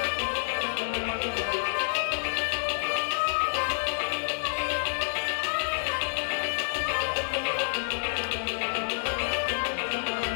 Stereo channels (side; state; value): right; silent; digital silence